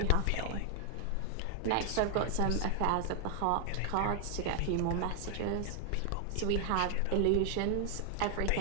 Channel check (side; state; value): both; different; correlation 0.00